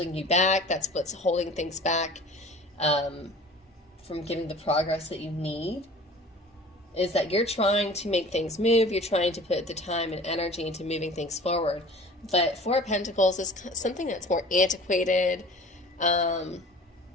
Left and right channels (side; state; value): both; normal; correlation 0.44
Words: you back. That's what's holding things back from getting the progress that you need, is that you're trying to make things move. You're trying to put the time and energy into moving things forward. But Four of Pentacles is something that's more antiquated.